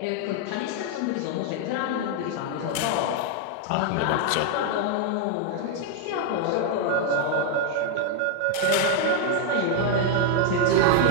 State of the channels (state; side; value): different; both; correlation 0.00